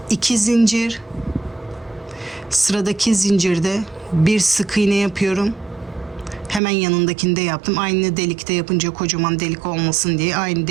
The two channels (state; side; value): drops out; left; at 6.6 s